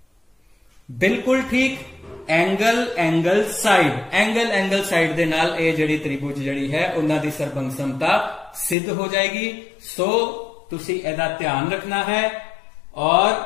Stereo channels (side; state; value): right; drops out; at 8.8 s